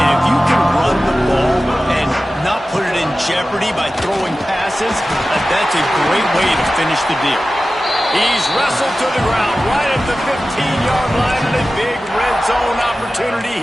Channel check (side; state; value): both; normal; correlation 0.95